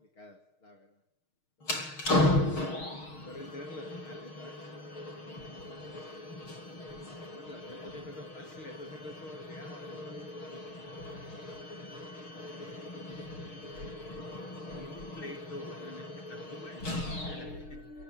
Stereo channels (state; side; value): late; right; 6.4 ms